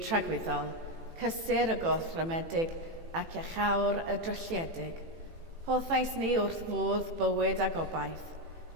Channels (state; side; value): late; left; 18 ms